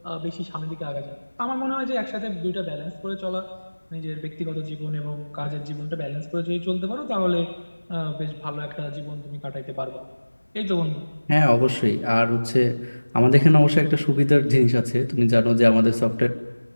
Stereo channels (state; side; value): inverted; both; correlation -1.00